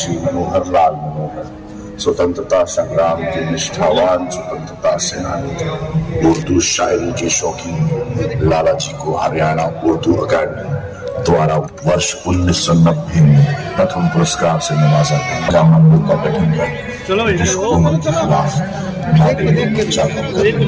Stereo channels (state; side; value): identical; both; correlation 1.00